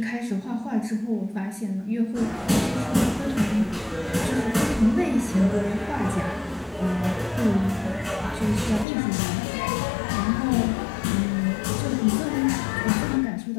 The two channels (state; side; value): drops out; right; at 8.8 s